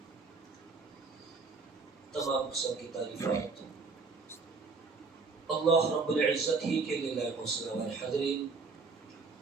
تمام قسم کی تعریفات اللہ رب العزت ہی کے لیے لائق وسلم. حاضرین،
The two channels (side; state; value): left; quieter; 4.4 dB